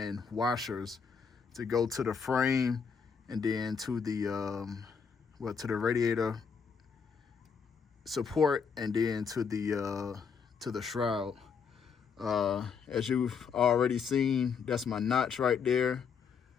washers to go to the frame, and then to the to the radiator support, and then to the shroud. As you've already seen, that's my notch right there.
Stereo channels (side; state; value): right; quieter; 6.1 dB